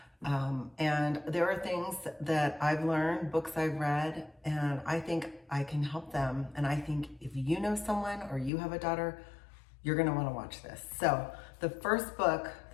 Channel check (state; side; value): drops out; right; at 8.5 s